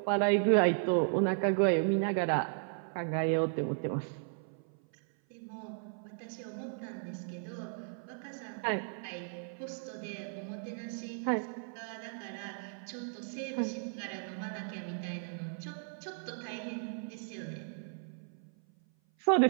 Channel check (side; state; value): left; silent; 54 dB below the other